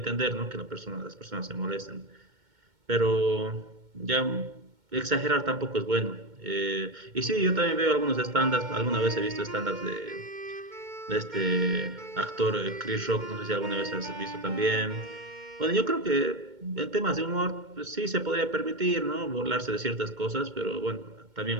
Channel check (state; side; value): late; left; 2.2 ms